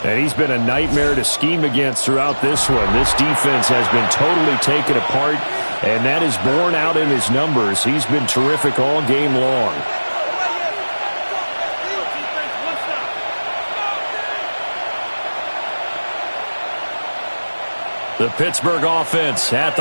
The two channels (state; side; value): inverted; both; correlation -1.00